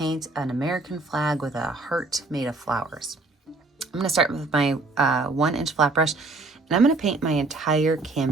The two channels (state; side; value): quieter; left; 3.4 dB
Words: an American flag with a heart made of flowers. I'm going to start with my 1-inch flat brush, and I'm going to paint my entire